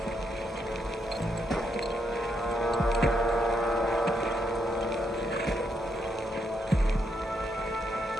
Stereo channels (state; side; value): normal; both; correlation 0.78